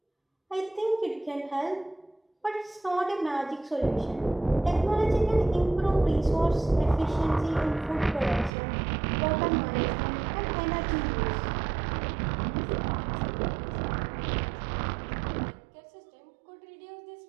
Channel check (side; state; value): left; drops out; at 8.5 s